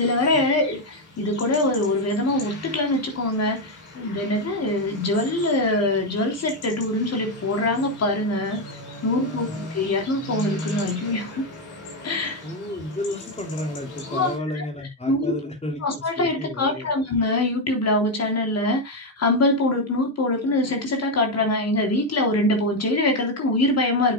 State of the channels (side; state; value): both; normal; correlation 0.05